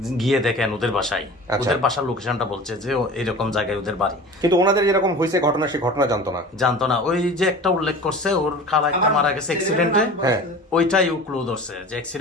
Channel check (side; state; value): both; normal; correlation 0.38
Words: গিয়ে দেখেন ওদের বাসায়, আচ্ছা। ওদের বাসার লোকেশনটা বলছে যে এরকম জায়গায় ওদের বাড়ি। কিন্তু ওনাদের যেরকম হয়েছে ঘটনা, সেই ঘটনা জানতো না। জানতো না, ওই যে একটা উল্লেখ করছে ওর খালা একটা মারা গেছে অ্যাক্সিডেন্টে, হ্যাঁ। ওইটাই ও ক্লু ধরছে যে